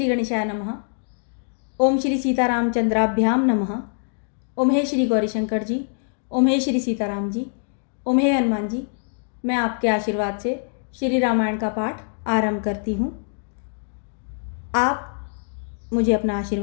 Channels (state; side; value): silent; right; digital silence